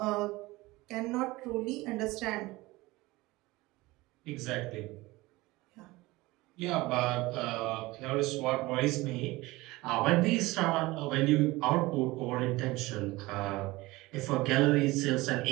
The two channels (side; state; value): left; quieter; 20.7 dB